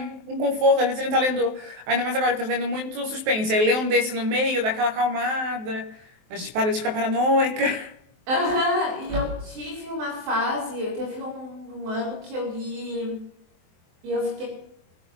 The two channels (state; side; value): late; left; 23 ms